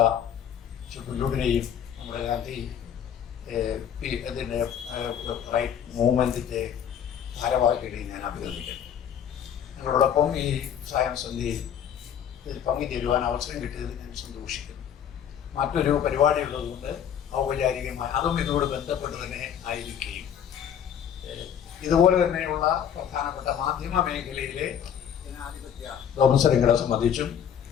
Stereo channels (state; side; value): quieter; right; 8.8 dB